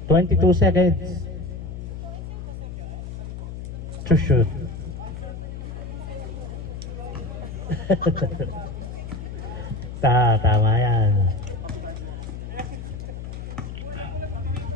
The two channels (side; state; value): left; noise; hum, 8 dB below the sound